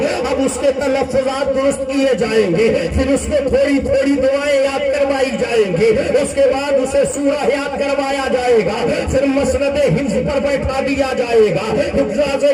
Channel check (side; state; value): both; identical; correlation 1.00